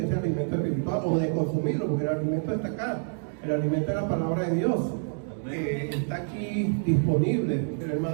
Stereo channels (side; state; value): left; silent; digital silence